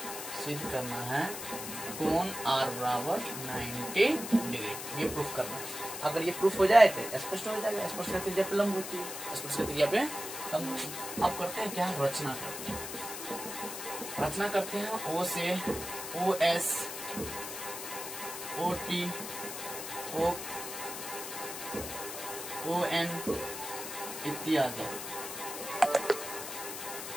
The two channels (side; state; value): left; noise; hiss, 7 dB below the sound